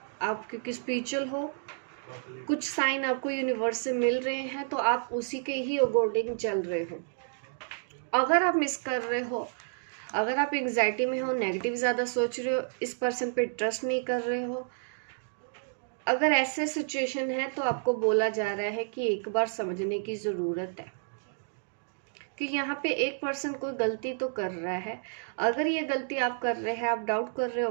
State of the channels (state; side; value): silent; left; digital silence